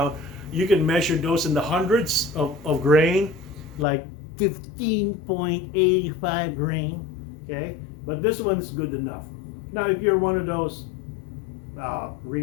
You can measure those in the hundreds of grain, like 15.85 grain. Okay, but this one's good enough. Now, if you're one of those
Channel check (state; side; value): drops out; right; at 3.9 s